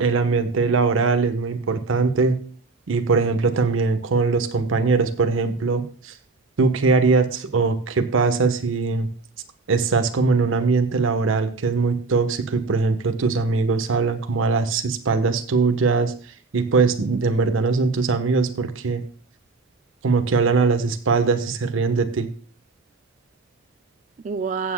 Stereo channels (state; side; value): quieter; left; 3.8 dB